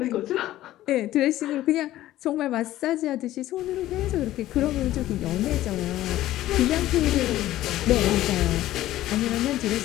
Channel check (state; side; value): quieter; right; 14.6 dB